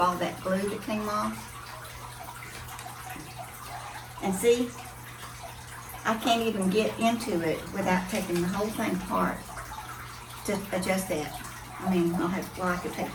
that glue that came off. And see, I can't even get into it without taking the whole thing apart to adjust that. I mean, I could take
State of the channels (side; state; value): both; identical; correlation 1.00